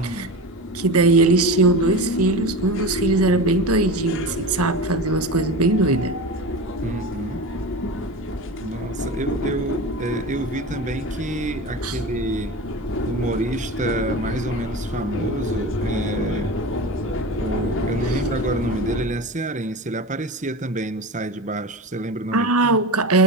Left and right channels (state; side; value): normal; both; correlation 0.27